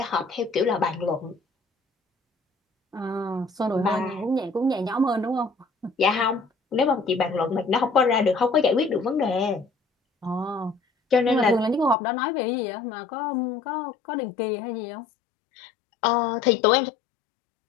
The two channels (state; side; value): drops out; right; at 12.0 s